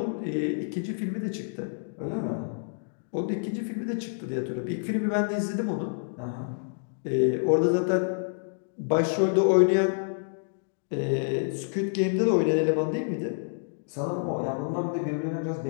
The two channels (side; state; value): right; silent; digital silence